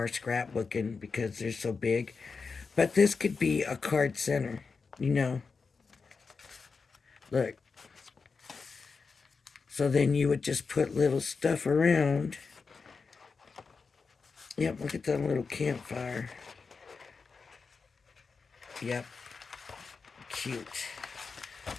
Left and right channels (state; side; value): quieter; right; 4.9 dB